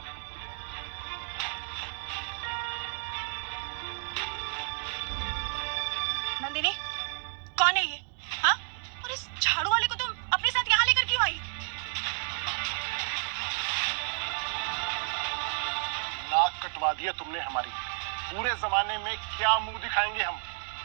नंदिनी, कौन है ये? हाँ? और इस झाड़ू वाले को तुम अपने साथ यहाँ लेकर क्यों आई? नाक कटवा दिया तुमने हमारी। पूरे जमाने में क्या मुंह दिखाएंगे हम?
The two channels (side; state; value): left; silent; 57 dB below the other